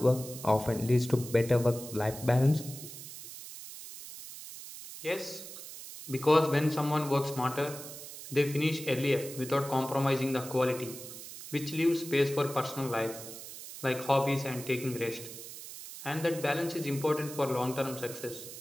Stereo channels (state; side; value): noise; right; hiss, 12 dB below the sound